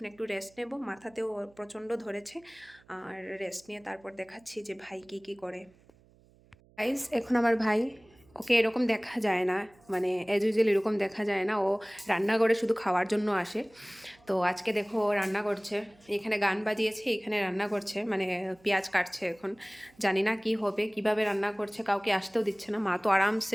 একটু রেস্ট নেব, মাথাতেও প্রচণ্ড ধরেছে, আর রেস্ট নিয়ে তারপর দেখাচ্ছি যে ভাই কি করে। গাইস, এখন আমার ভাই, ওকে এরকম দেখা যায় না, মানে অ্যাজ ইউজুয়াল এরকম দেখা যায় না, ও রান্নাঘরে শুধু খাওয়ার জন্য আসে। তো আজকে দেখো ও রান্না করছে, এখানে গান বাজিয়েছে, এখানে রান্না করছে, মানে পেঁয়াজ কাটছে। এখন জানি না কি হবে, কিভাবে রান্না করছে, কাউকে আসতেও দিচ্ছে না। মা তো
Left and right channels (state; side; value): noise; right; hum, 29 dB below the sound